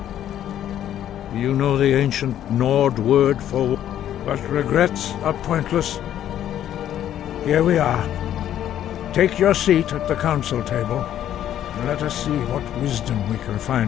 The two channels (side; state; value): right; quieter; 11.1 dB